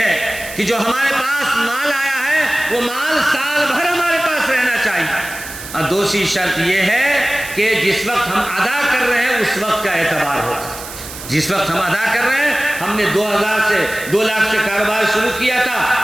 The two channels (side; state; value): right; noise; hiss, 12 dB below the sound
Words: کہ جو ہمارے پاس مال آیا ہے وہ مال سال بھر ہمارے پاس رہنا چاہیے، اور دوسری شرط یہ ہے کہ جس وقت ہم ادا کر رہے ہیں اس وقت کا اعتبار ہو، جس وقت ہم ادا کر رہے ہیں، ہم نے 2 لاکھ سے کاروبار شروع کیا تھا،